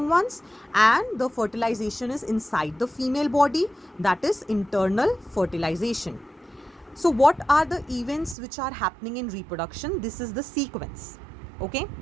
ones, and the fertilization is inside the female body, that is internal fertilization. So what are the events which are happening in reproduction? This is the sequence. Okay,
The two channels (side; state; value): left; drops out; at 8.3 s